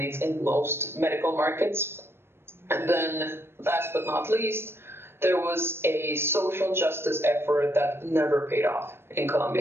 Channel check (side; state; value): left; late; 0.12 ms